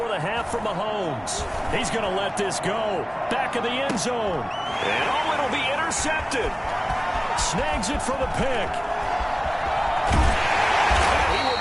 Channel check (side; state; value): both; identical; correlation 1.00